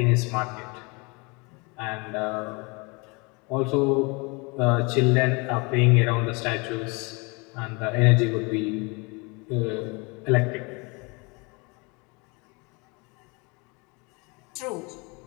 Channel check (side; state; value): right; quieter; 29.1 dB